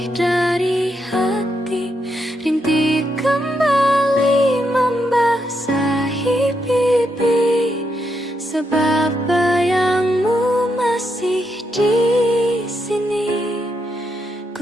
dari hati. Rintik kembali membasahi pipi, sebab bayang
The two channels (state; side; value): normal; both; correlation 0.80